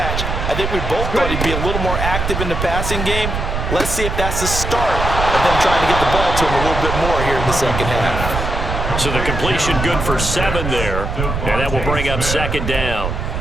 I think we both thought he'd be a little more active in the passing game. Let's see if that's the start of them trying to get the ball to him a little bit more here in the second half. So the completion good for 7 there, and that will bring up second down.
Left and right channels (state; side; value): noise; right; rumble, 3 dB below the sound